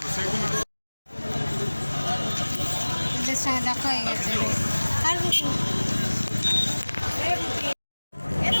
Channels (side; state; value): both; inverted; correlation -1.00